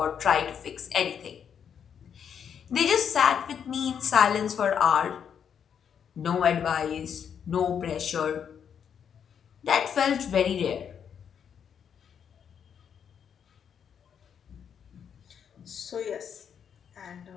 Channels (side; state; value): right; quieter; 7.9 dB